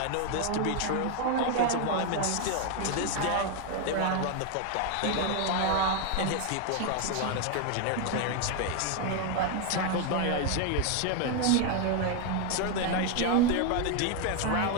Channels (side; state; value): both; different; correlation 0.01